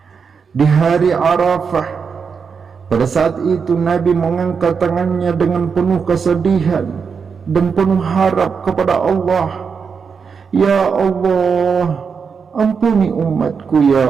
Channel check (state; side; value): quieter; left; 5.9 dB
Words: Di hari Arafah, pada saat itu Nabi mengangkat tangannya dengan penuh kesedihan dan penuh harap kepada Allah. Ya Allah, ampuni umatku